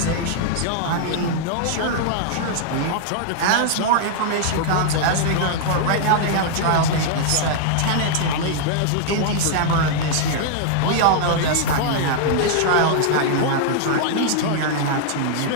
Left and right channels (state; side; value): different; both; correlation -0.01